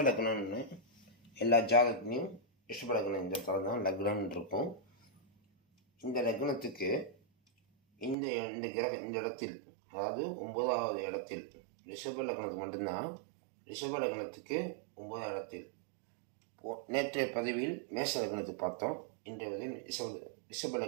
லக்னம்னு எல்லா ஜாதகத்துலேயும் ரிஷப லக்னம் இந்த தரம் தான் லக்னம்னு இருக்கும். இந்த லக்னத்துக்கு இந்த இடத்தில், அதாவது 9வது இடத்தில், ரிஷப லக்னத்துக்கு மட்டும்தான். ரிஷப லக்னத்துக்கு 9வது இடத்தில் நேற்றைய பதிவில் மேஷ லக்னத்துக்கு பார்த்தோம். இன்றைய பதிவில் ரிஷப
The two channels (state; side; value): drops out; left; at 8.2 s